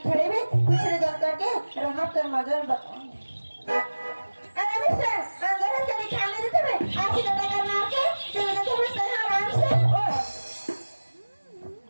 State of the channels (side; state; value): both; inverted; correlation -1.00